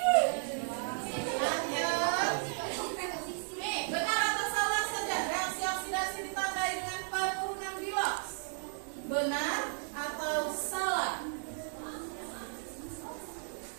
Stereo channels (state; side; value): silent; left; digital silence